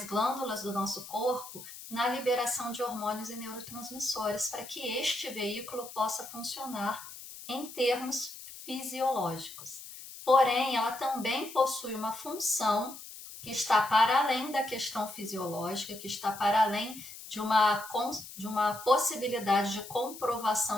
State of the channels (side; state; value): left; noise; hiss, 14 dB below the sound